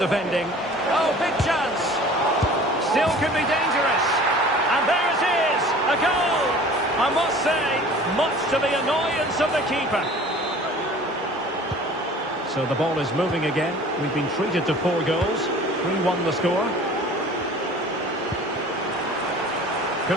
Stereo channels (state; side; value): normal; both; correlation 0.45